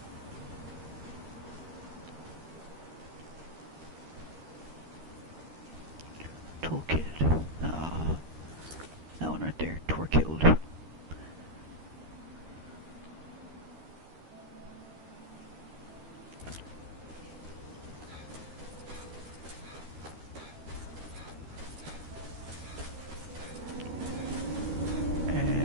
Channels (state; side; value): late; left; 13 ms